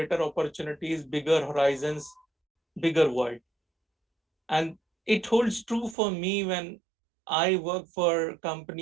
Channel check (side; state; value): left; drops out; at 6.0 s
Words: opportunities, bigger horizons, bigger world. And it holds true for me when I work for